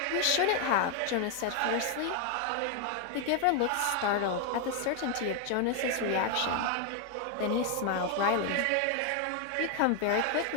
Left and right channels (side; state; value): both; different; correlation 0.01